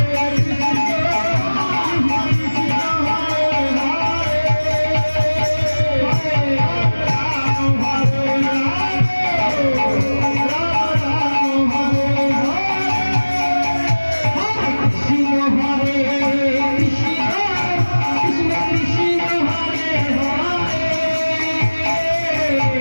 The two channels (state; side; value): inverted; both; correlation -1.00